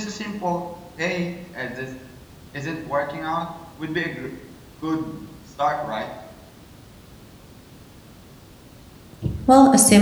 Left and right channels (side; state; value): both; identical; correlation 1.00